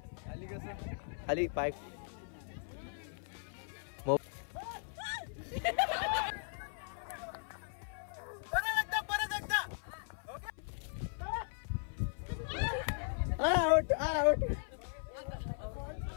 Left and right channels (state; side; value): silent; right; 52 dB below the other